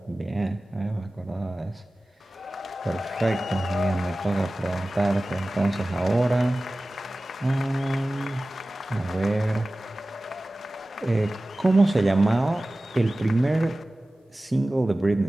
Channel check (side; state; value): both; normal; correlation 0.97